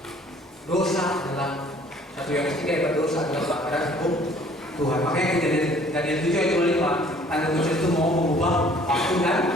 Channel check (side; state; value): both; normal; correlation 0.56